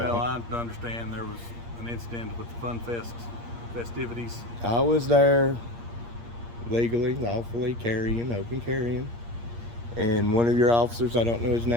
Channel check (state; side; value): late; left; 8.6 ms